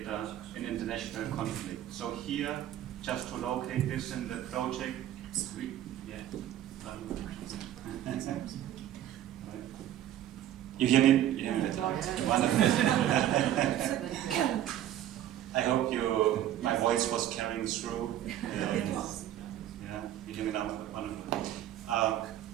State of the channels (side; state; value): left; quieter; 12.0 dB